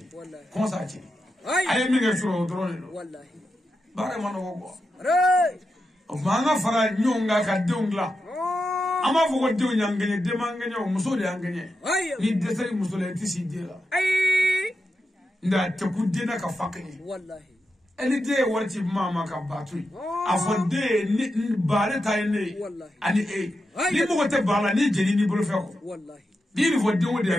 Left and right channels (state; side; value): normal; both; correlation 0.88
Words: Wallahi. Ko sa che. Ay. Ay mi nge tro drone do. Wallahi. Bare ma no ko. Ray. O ma nga fara nyonga ka dongla. Ama fo ko dew nyangene de mangene o muso de angene Ayam. ni desari muso le tisi de la Ay. nda te ku de na ka fakene Wallahi. eli de warti mama ka batui afo de ni bare tay ne Wallahi. ani ni mo te bala ni jeni ni bolo fe ko Wallahi. ni ni fo de wo de